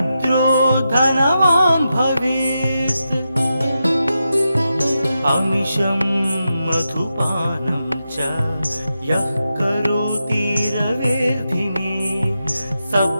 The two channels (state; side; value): inverted; both; correlation -0.88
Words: धनवान् भवेत् अमिषं मधुपानं च यः करोति रवेर्धिने